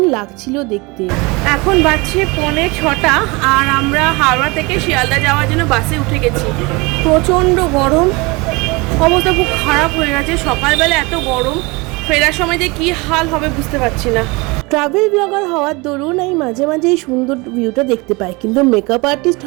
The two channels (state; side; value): quieter; left; 25.7 dB